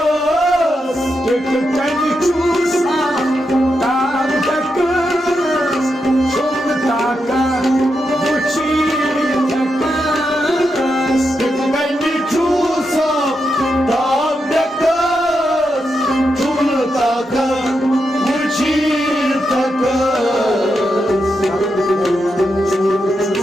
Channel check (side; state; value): both; normal; correlation 0.85